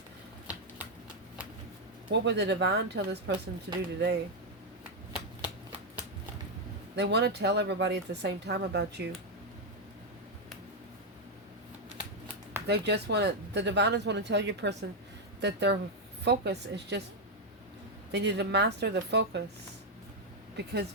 What would the Divine tell this person to do today? They want to tell everybody at the same time about you. They just want to, the Diviners want to tell your person that their focus is just, they need to master the focus. Because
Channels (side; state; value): both; normal; correlation 0.01